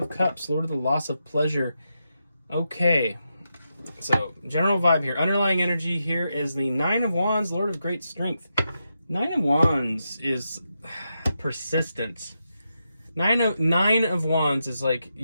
Cups, Lord of the Loss of Pleasure. Okay. So, general vibe here. Underlying energy here is the Nine of Wands, Lord of Great Strength. Nine of Wands is persistence. Nine of Wands is like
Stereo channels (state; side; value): inverted; both; correlation -0.86